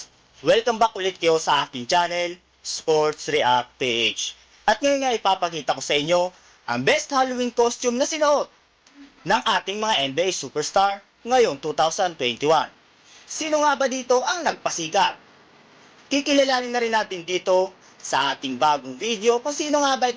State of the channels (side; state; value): both; identical; correlation 1.00